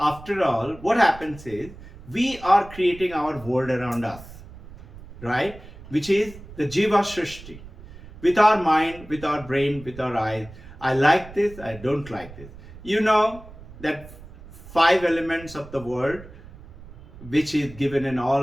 all, what happens is we are creating our world around us, right? Which is the Jiva srishti. With our mind, with our brain, with our eyes. I like this, I don't like this. You know that 5 elements of the world, which is given in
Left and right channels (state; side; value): noise; right; rumble, 17 dB below the sound